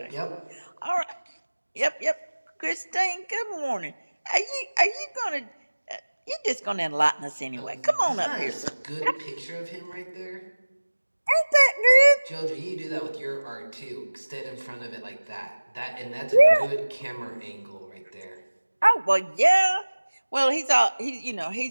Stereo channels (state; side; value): inverted; both; correlation -1.00